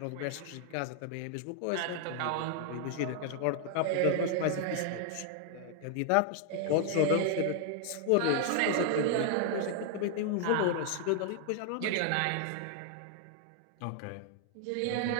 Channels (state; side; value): different; both; correlation 0.00